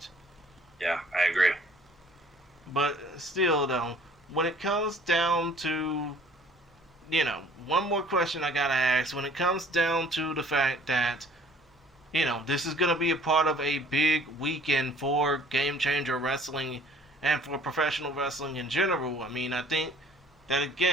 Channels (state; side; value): normal; both; correlation 0.55